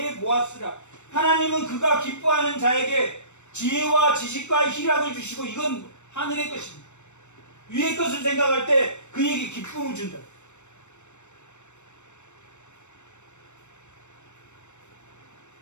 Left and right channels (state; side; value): late; right; 0.84 ms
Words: 하나님은 그가 기뻐하는 자에게 지혜와 지식과 희락을 주시고, 이건 하늘의 것입니다. 위의 것을 생각할 때 그에게 기쁨을 준다.